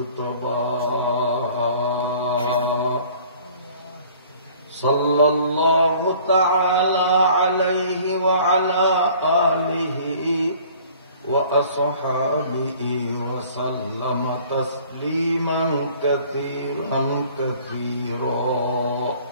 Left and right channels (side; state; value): both; inverted; correlation -0.52